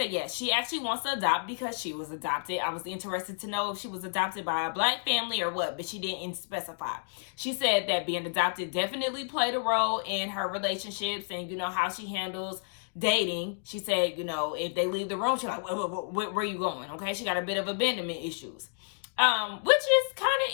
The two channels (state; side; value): silent; right; digital silence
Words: yes, she actually wants to adopt because she was adopted. I was interested to know if she was adopted by a black family or what, but she didn't specify. She said that being adopted definitely played a role in her relationships and, how she handles dating. She said, if they leave the room, she's like, where are you going? Okay, she got a bit of abandonment issues, which is kind